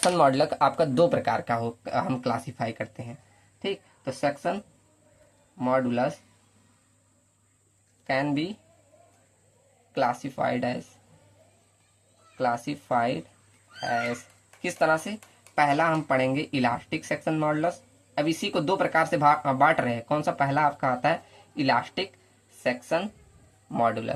मॉडुलस आपका दो प्रकार का हम क्लासीफाई करते हैं, ठीक। तो section modulus can be classified as किस तरह से, पहला हम पढ़ेंगे इलास्टिक सेक्शन मॉडुलस। अब इसी को दो प्रकार से बांट रहे हैं, कौन सा, पहला आपका आता है इलास्टिक सेक्शन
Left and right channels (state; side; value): identical; both; correlation 1.00